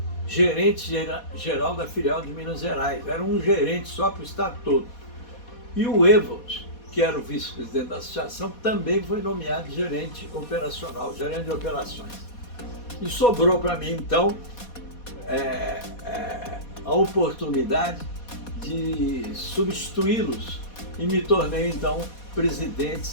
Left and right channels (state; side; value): late; right; 4.2 ms